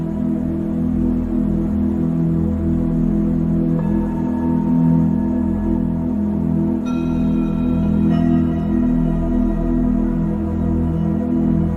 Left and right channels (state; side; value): identical; both; correlation 1.00